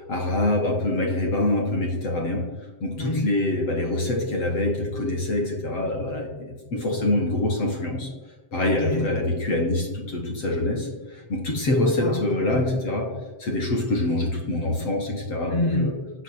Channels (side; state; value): right; late; 7.7 ms